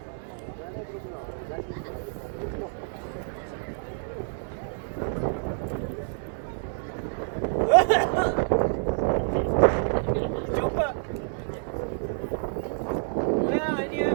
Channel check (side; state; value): left; silent; 59 dB below the other